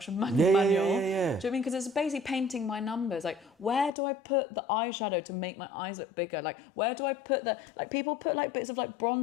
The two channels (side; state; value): right; drops out; at 3.9 s